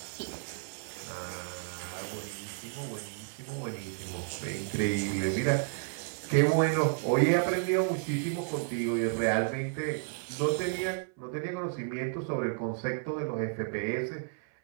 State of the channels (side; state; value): left; silent; 56 dB below the other